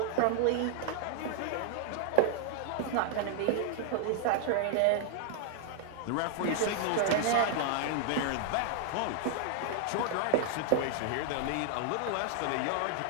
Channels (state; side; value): different; both; correlation 0.00